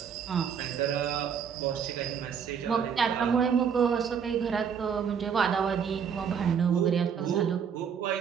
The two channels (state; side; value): quieter; left; 7.2 dB